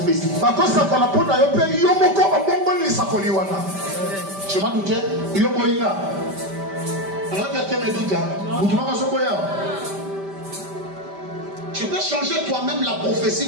Je m'en doutais. Tu peux changer toi-même la prophétie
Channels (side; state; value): left; late; 5.1 ms